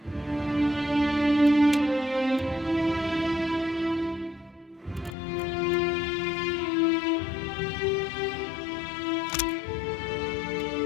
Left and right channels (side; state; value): right; drops out; at 5.2 s